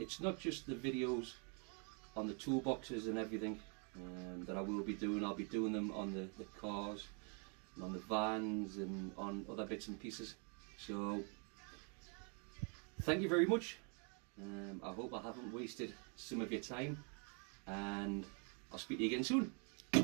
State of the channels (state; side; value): quieter; left; 38.3 dB